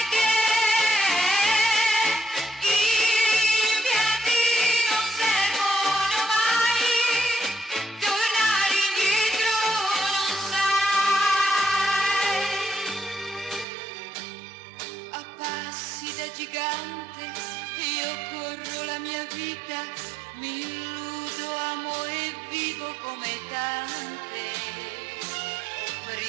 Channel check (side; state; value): left; drops out; at 13.7 s